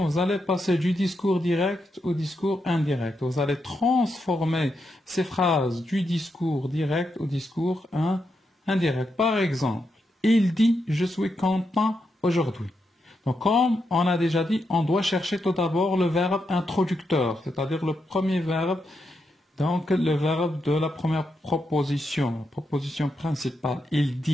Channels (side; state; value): both; normal; correlation 0.84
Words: vous allez passer du discours direct au discours indirect. Vous allez transformer ces phrases du discours direct au discours indirect. Par exemple, il dit, je suis content aujourd'hui. Donc, comme on a déjà dit, on doit chercher tout d'abord le verbe introducteur, c'est-à-dire le premier verbe, donc le verbe de la première proposition, proposition principale. Il